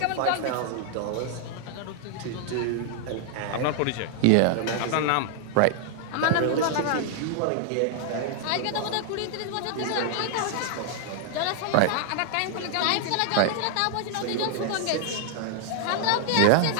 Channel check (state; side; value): different; both; correlation 0.00